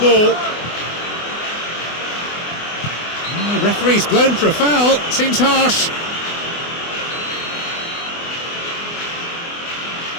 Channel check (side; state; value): right; late; 24 ms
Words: Oh, referee's blown for a foul. Seems harsh.